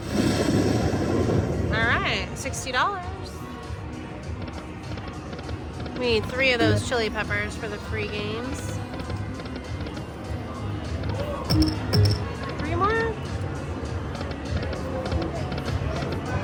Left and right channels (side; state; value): both; identical; correlation 1.00